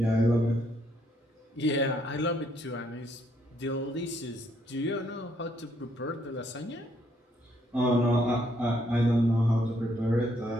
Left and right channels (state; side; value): normal; both; correlation 0.71